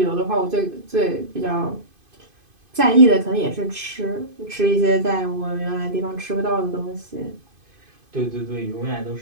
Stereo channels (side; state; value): left; late; 2.5 ms